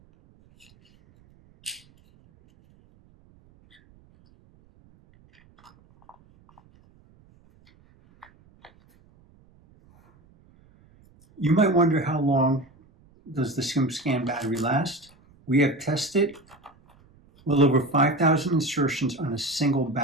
You might wonder, how long does the Skim Scan battery last? We have tested well over 5,000 insertions on a single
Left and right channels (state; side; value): noise; right; rumble, 30 dB below the sound